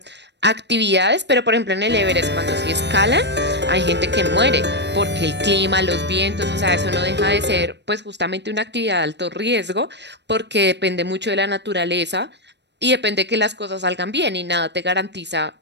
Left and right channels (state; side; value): late; left; 0.50 ms